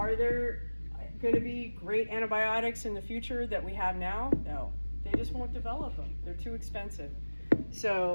there going to be great antibiotics in the future that we have now? No. They just won't develop them. They're too expensive.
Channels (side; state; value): both; inverted; correlation -1.00